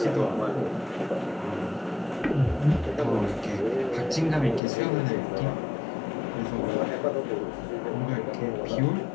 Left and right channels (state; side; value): drops out; right; at 4.6 s